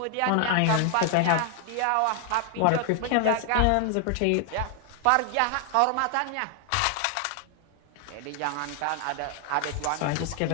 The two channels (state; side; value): different; both; correlation 0.00